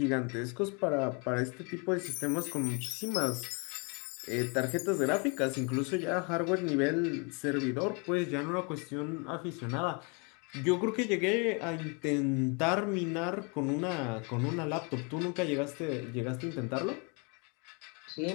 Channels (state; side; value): quieter; right; 33.3 dB